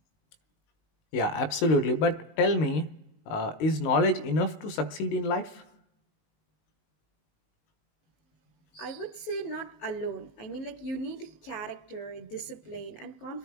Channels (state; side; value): late; right; 19 ms